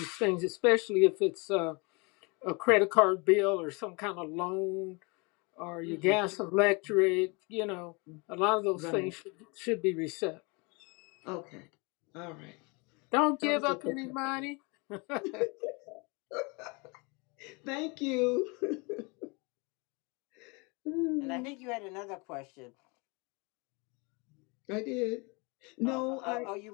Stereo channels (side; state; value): right; quieter; 29.4 dB